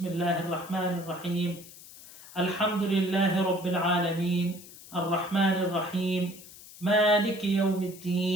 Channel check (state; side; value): noise; left; hiss, 18 dB below the sound